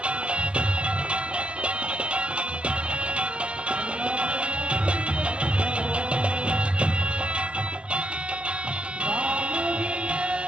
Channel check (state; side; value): late; left; 0.054 ms